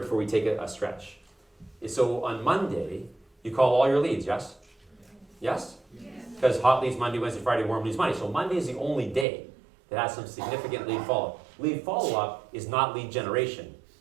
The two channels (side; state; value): left; drops out; at 9.2 s